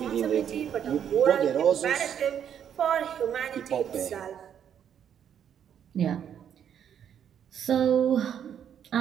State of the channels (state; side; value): quieter; left; 8.9 dB